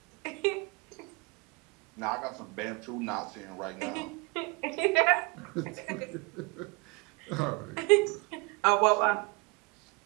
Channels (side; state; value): left; quieter; 29.0 dB